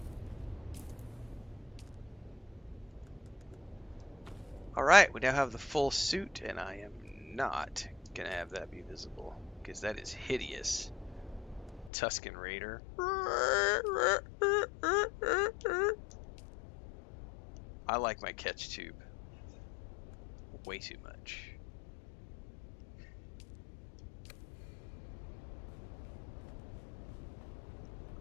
Alright, we now have the full suit, and I am not gonna have that be visible, because that is hideous. Tusken Raider. I like my catch tube way too much.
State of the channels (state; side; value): drops out; right; at 11.9 s